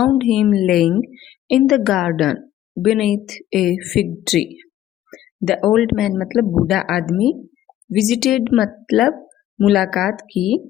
him laying in the garden beneath a fig tree. The old man मतलब बूढ़ा आदमी, visited मतलब मुलाकात की,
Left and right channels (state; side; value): quieter; right; 12.8 dB